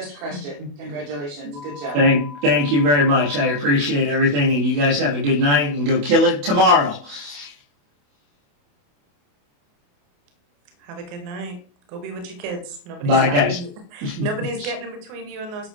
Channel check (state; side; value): late; left; 28 ms